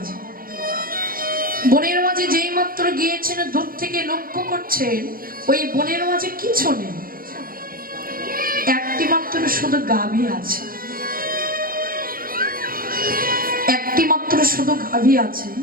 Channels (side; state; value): left; late; 0.42 ms